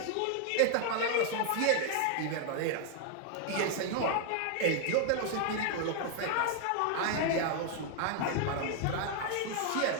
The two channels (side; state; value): both; different; correlation 0.00